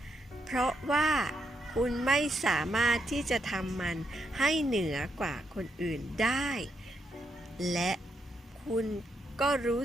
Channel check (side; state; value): both; normal; correlation 0.80